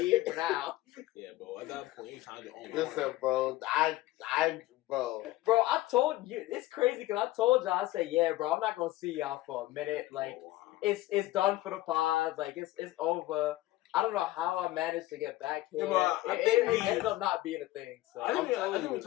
now. Yeah, bro, at that point, you trying to own. Listen, bro, Bro, I told you, it's crazy because I told y'all, I said, yeah, bro, I'm not gonna see y'all for a minute. Like, it's done for the pod. Like, it's over. I don't know how I managed to get back here. Yeah, it ended up not being a thing. So I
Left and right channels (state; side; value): quieter; right; 17.2 dB